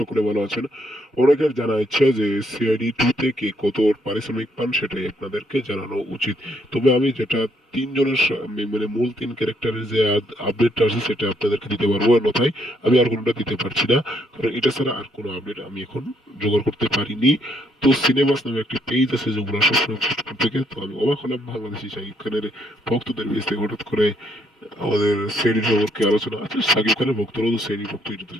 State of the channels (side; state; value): both; normal; correlation 0.71